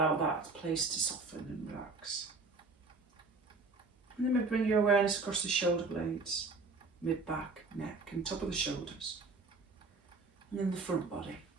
that place to soften and relax. And then maybe bring your awareness across the shoulder blades, mid-back, neck and top of the shoulders. And then the front body.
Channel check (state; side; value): quieter; left; 3.8 dB